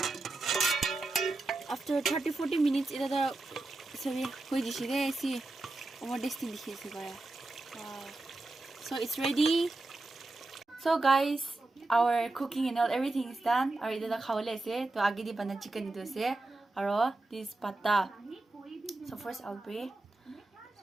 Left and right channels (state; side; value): quieter; left; 3.0 dB